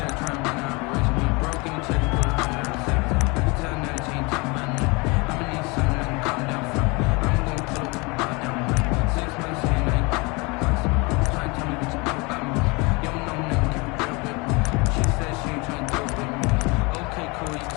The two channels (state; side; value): quieter; right; 27.5 dB